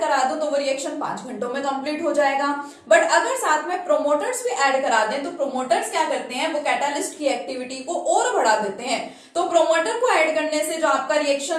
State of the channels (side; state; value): both; identical; correlation 1.00